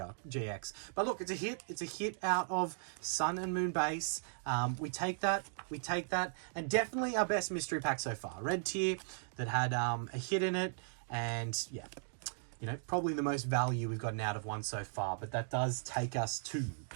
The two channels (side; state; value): left; silent; digital silence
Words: But look, it's a hit. It's a hit out of Sun and Moon base. We take that. And definitely our best mystery pack so far. Red tier that had a hit in it. And yeah, you know, probably the most value we've gotten out of one so far. But that does take us to